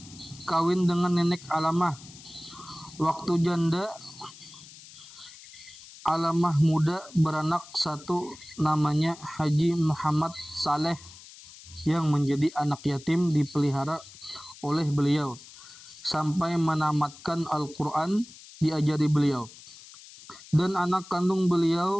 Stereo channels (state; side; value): noise; left; hiss, 19 dB below the sound